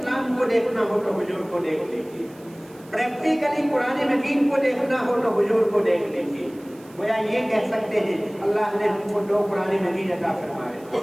کو دیکھنا ہو تو حضور کو دیکھ لیجیے، پریکٹیکلی قرآن مجید کو دیکھنا ہو تو حضور کو دیکھ لیجیے. گویا یہ کہہ سکتے ہیں اللہ نے ہم کو دو قرآن مجید عطا فرمائے،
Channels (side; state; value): right; noise; hiss, 26 dB below the sound